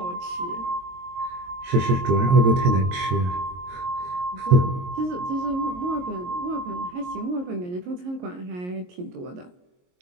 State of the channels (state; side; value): late; left; 22 ms